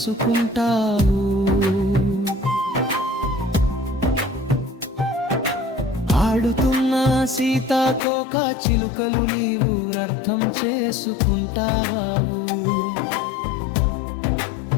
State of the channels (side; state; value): right; drops out; at 8.0 s